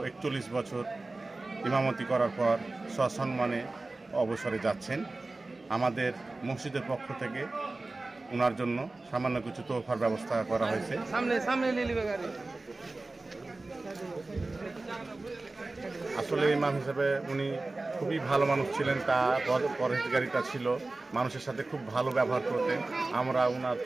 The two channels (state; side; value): quieter; left; 3.2 dB